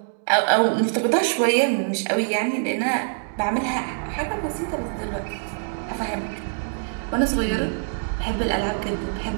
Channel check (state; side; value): silent; left; digital silence